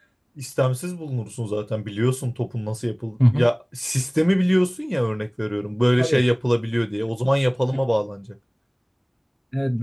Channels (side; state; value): both; identical; correlation 1.00